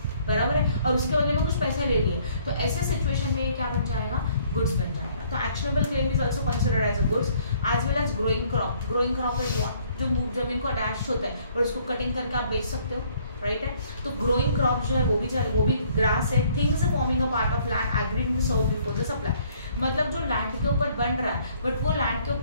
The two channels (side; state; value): both; inverted; correlation -0.62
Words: बराबर है, और उसके बदले में कुछ पैसे ले लिए, तो ऐसे सिचुएशन में ये क्या बन जाएगा? गुड्स बन जाएगा। तो actionable claim is also considered as a goods as well as growing crop. Growing crop is what? जो जमीन को अटैच होता है और उसको कटिंग करके आप बेच सकते हो, राइट है? तो ग्रोइंग क्रॉप जो है वो भी ग्रास है। Things forming a part of land agreed in serve before the supply, मतलब जो लैंड के ऊपर बन रहा है, बट वो लैंड के